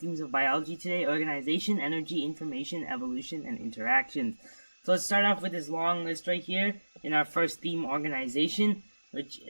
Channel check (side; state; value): both; inverted; correlation -1.00